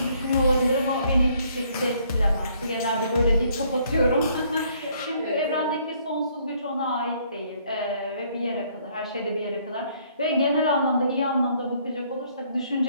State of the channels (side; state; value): both; inverted; correlation -0.65